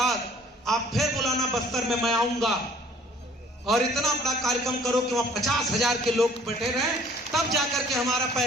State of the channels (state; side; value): normal; both; correlation 0.55